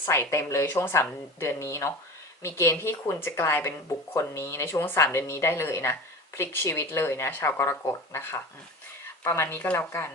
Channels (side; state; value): both; normal; correlation 0.33